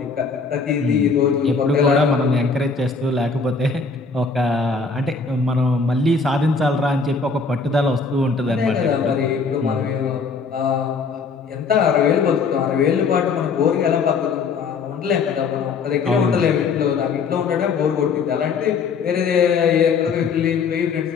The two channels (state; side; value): quieter; right; 4.8 dB